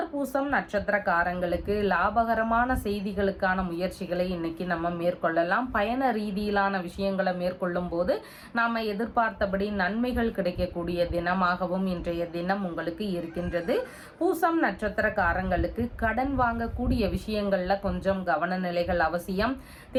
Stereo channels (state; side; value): identical; both; correlation 1.00